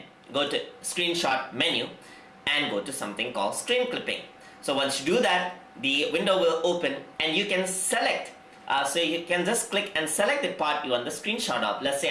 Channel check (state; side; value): identical; both; correlation 1.00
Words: go to screenshot menu, and go to something called screen clipping. So once you do that, the window will open, and you can select. So you can just click and select the part you want the screenshot of. Let's